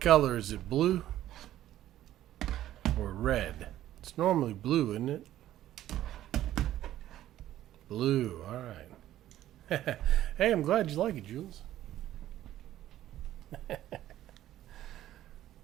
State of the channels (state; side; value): quieter; left; 13.2 dB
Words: is it? Blue or red? It's normally blue, isn't it? Blue, all right. Hey, I'm glad you like it, Jules.